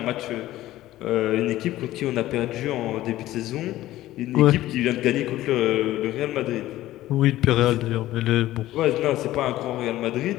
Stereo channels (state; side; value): quieter; right; 15.2 dB